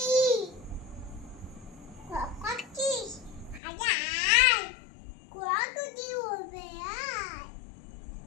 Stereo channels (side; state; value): right; drops out; at 3.6 s